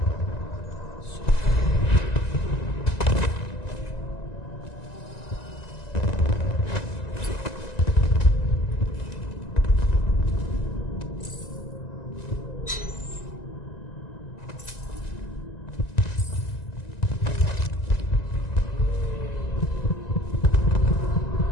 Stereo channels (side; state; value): right; late; 1.9 ms